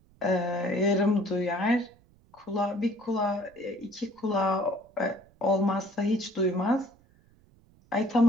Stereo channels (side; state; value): right; noise; rumble, 30 dB below the sound